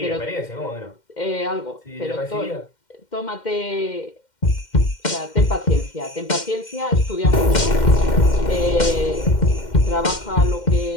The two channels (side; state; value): right; late; 2.1 ms